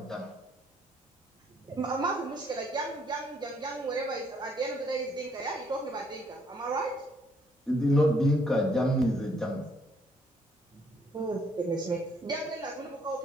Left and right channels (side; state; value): both; normal; correlation 0.68